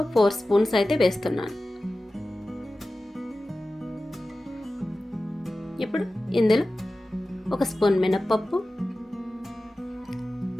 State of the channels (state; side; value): normal; both; correlation 0.95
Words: 4 స్పూన్స్ అయితే వేస్తున్నాను. ఇప్పుడు ఇందులో 1 స్పూన్ మినప్పప్పు,